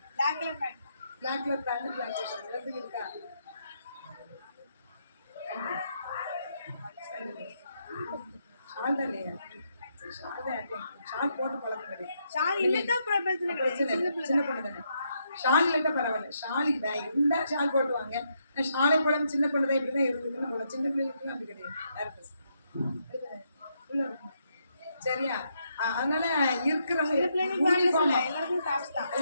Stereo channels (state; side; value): inverted; both; correlation -0.78